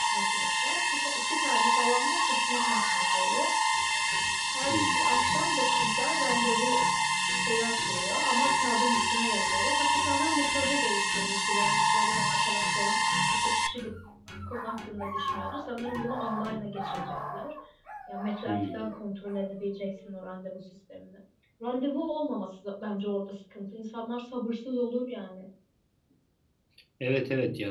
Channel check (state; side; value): identical; both; correlation 1.00